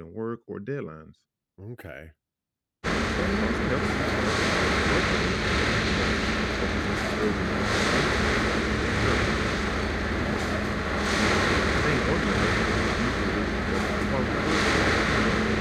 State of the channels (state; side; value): identical; both; correlation 1.00